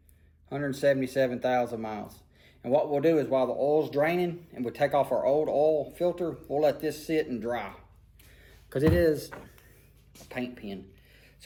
177,000 miles. And what we'll do is while the oil's draining and we take off our old oil filter, we'll let this sit and dry because it is a paint pen.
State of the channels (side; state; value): both; identical; correlation 1.00